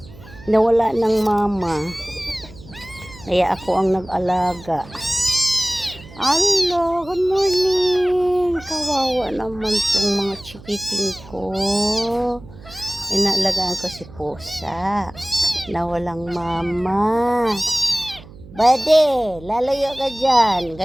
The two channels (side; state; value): right; noise; hum, 19 dB below the sound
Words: Nawala ng mama. Kaya ako ang nag-alaga. Hello, good morning. Kawawa naman tong mga chikiting ko. Inaalagaan ko si pusa na walang mama. Bade, lalayo ka dyan.